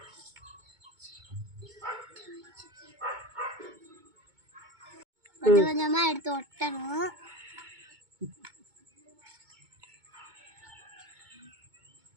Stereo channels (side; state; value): left; late; 2.2 ms